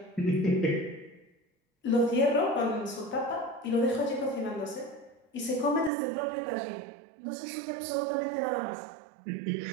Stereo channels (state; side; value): drops out; left; at 5.9 s